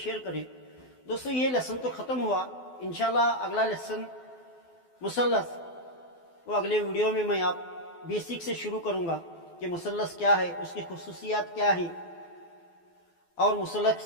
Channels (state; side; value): late; right; 12 ms